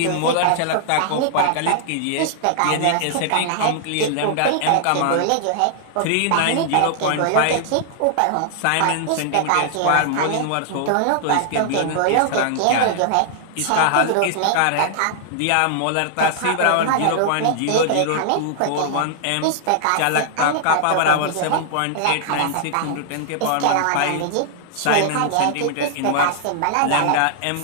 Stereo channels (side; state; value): both; different; correlation -0.01